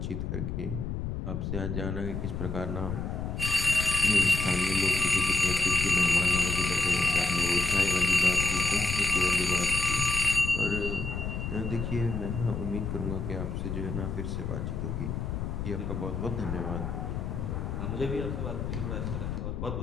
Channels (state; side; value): noise; left; rumble, 3 dB below the sound